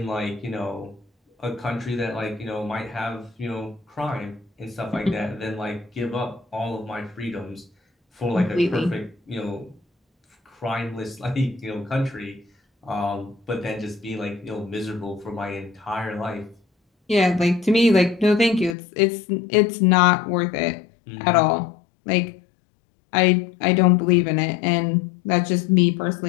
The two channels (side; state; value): right; drops out; at 18.8 s